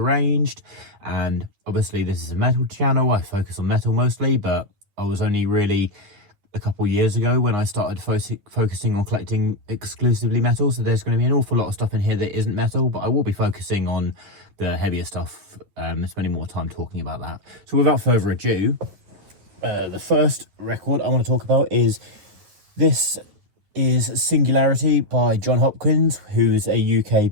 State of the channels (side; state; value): left; late; 10 ms